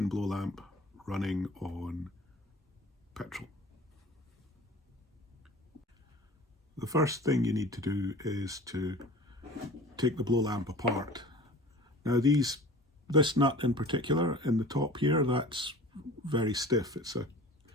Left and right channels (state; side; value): normal; both; correlation 0.42